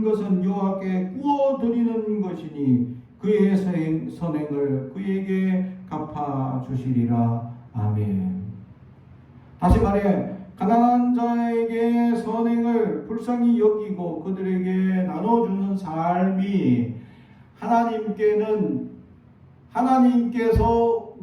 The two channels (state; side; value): identical; both; correlation 1.00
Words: 것은 여호와께 구워드리는 것이니 그의 선행을 그에게 갚아주시리라. 아멘. 다시 말해 가난한 자에게 선행을 불쌍히 여기고 그들에게 나눠주는 삶이 하나님께서